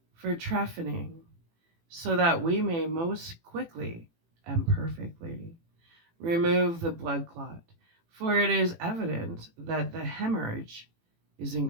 for trephining, so that we may most quickly and perfectly remove the blood clot, for it is evident that the hemorrhage is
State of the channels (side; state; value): left; late; 18 ms